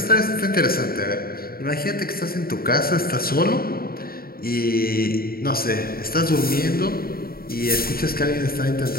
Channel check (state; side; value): late; right; 0.43 ms